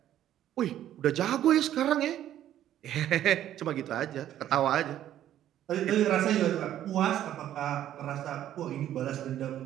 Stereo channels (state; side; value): quieter; left; 11.8 dB